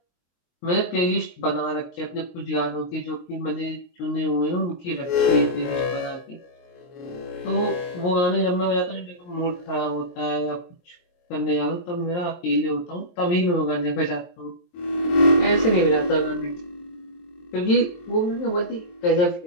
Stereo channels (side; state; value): right; late; 23 ms